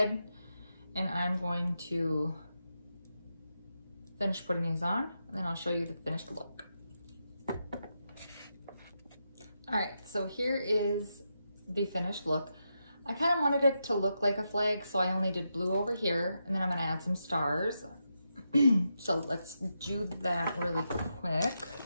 and I'm going to finish putting these on, and then I'll show you the finished look. All right, so here is the finished look. I kind of wanted it to look like a flag, so I only did blue over here, and then I'm gonna add some stars. So let's do that really quick.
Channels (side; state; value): both; inverted; correlation -0.85